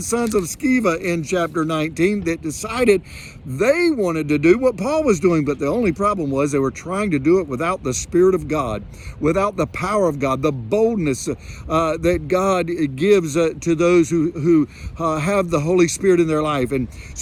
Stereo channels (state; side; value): identical; both; correlation 1.00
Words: of Sceva in chapter 19 that decided they wanted to do what Paul was doing, but the only problem was they were trying to do it without the Spirit of God, without the power of God, the boldness that God gives to those who have the Holy Spirit in their life. And